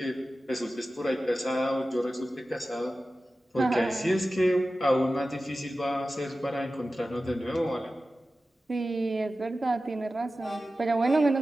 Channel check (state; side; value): normal; both; correlation 0.94